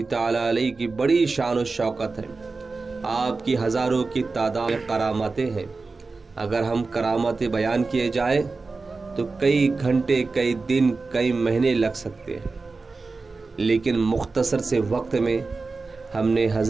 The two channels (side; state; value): left; quieter; 3.9 dB